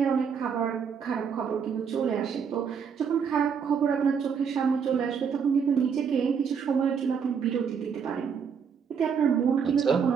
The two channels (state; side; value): quieter; left; 6.7 dB